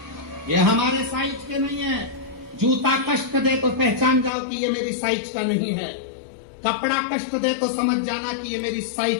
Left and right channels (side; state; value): right; drops out; at 4.3 s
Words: ये हमारे साइज के नहीं है। जूता कष्ट दे तो पहचान जाओ कि ये मेरी साइज का नहीं है। कपड़ा कष्ट दे तो समझ जाना कि ये मेरी